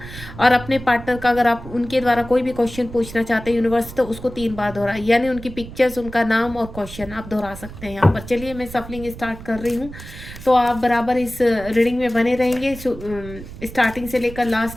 और अपने पार्टनर का, अगर आप उनके द्वारा कोई भी क्वेश्चन पूछना चाहते हैं यूनिवर्स, तो उसको 3 बार दोहराए, यानी उनकी पिक्चर्स, उनका नाम और क्वेश्चन आप दोहरा सकते हैं यहाँ पर। चलिए मैं सफलिंग स्टार्ट कर रही हूँ, तो आप बराबर इस रीडिंग में बने रहेंगे स्टार्टिंग से लेकर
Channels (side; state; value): right; noise; rumble, 14 dB below the sound